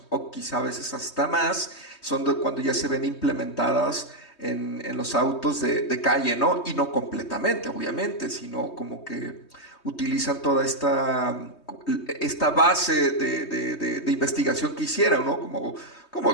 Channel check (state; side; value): late; right; 3.2 ms